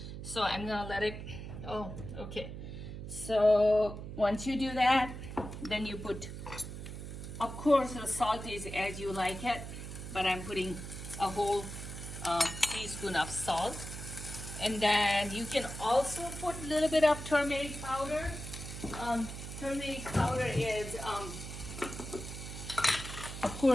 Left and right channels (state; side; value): noise; right; hum, 9 dB below the sound